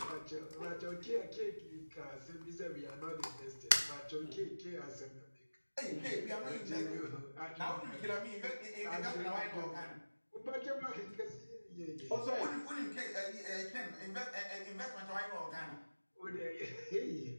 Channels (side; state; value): both; inverted; correlation -1.00